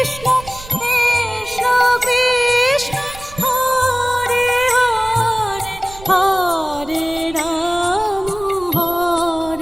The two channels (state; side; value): noise; right; rumble, 17 dB below the sound